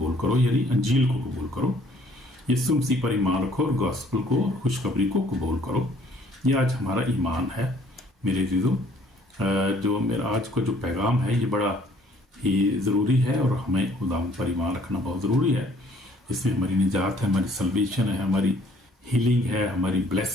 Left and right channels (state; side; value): normal; both; correlation 0.59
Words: करो, यानी अंजील को कबूल करो। यीशु मसीह पर ईमान रखो और गॉस्पल को, खुशखबरी को कबूल करो। ये आज हमारा ईमान है मेरे जीजों। जो मेरा आज का जो पैगाम है ये बड़ा ही ज़रूरी है और हमें खुदा पर ईमान रखना बहुत ज़रूरी है। इसमें हमारी निजात है, हमारी सल्वेशन है, हमारी हीलिंग है, हमारी